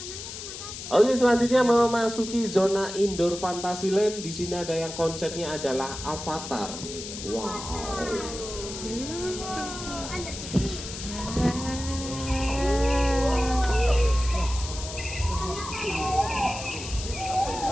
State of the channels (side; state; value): left; noise; hiss, 9 dB below the sound